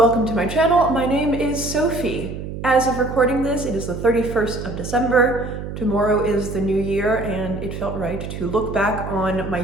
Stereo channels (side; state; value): right; noise; hum, 8 dB below the sound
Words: to my channel. My name is Sophie. As of recording this, it is the 31st of December. Tomorrow is the new year, and it felt right to look back on my